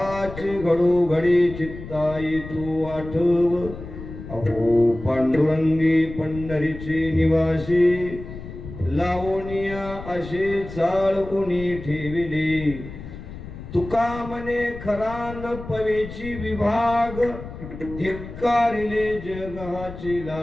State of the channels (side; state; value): left; noise; rumble, 12 dB below the sound